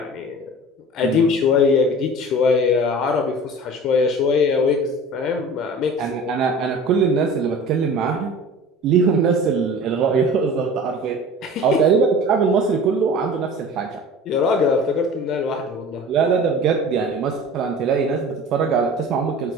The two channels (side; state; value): both; normal; correlation 0.39